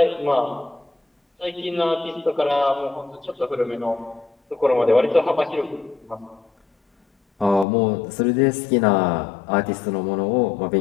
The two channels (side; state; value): right; drops out; at 7.7 s